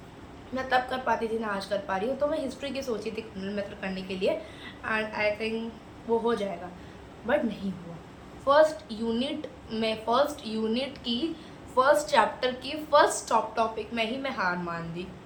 मैं तब कर पाती थी ना, आज कर पा रही हूँ। तो मैं हिस्ट्री की सोची थी कॉर्नल मेथड करने के लिए, एंड आई थिंक वो हो जाएगा, बट नहीं हुआ। फर्स्ट यूनिट की फर्स्ट चैप्टर की फर्स्ट टॉपिक में ही मैं हार मान दी।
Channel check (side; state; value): both; identical; correlation 1.00